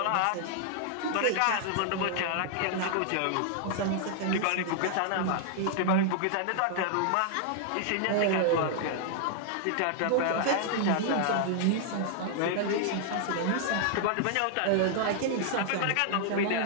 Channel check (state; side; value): different; both; correlation -0.01